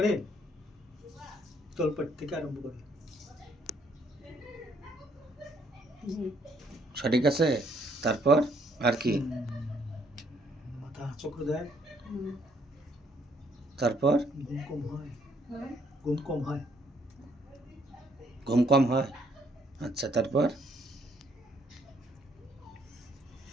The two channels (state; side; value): normal; both; correlation 0.68